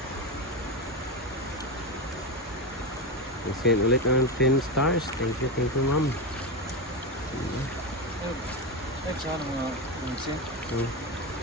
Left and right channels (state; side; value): normal; both; correlation 0.15